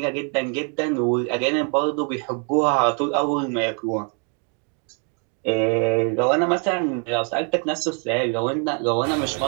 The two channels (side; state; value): left; quieter; 39.6 dB